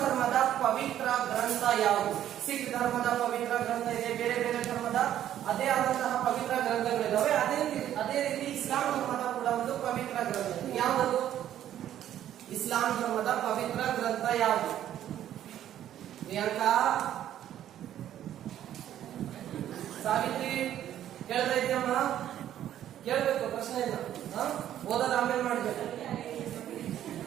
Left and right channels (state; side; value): quieter; left; 11.4 dB